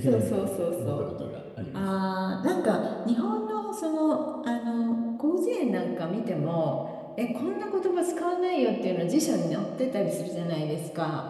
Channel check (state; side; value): identical; both; correlation 1.00